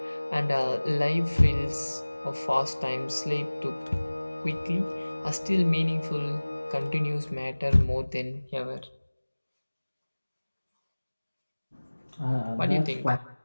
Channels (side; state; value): both; inverted; correlation -1.00